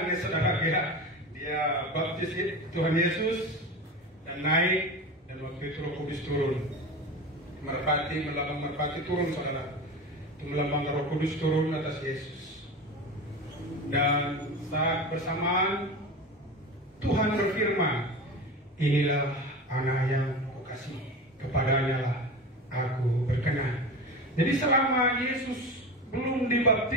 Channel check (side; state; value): both; normal; correlation 0.28